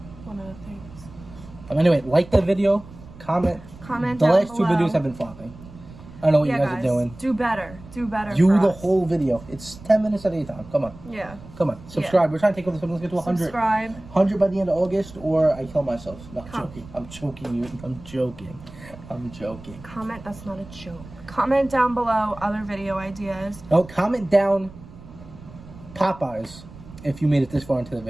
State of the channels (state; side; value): noise; right; rumble, 18 dB below the sound